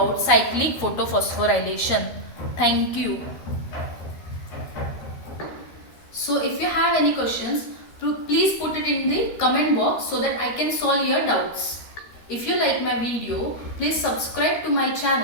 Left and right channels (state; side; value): late; right; 13 ms